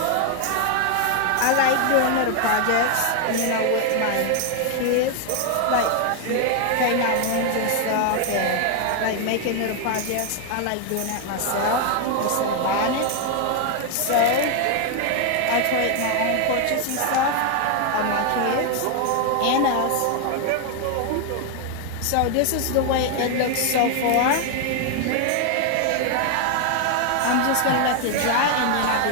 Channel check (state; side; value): different; both; correlation 0.00